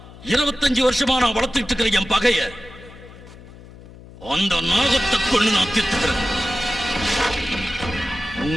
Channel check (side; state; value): left; noise; hum, 19 dB below the sound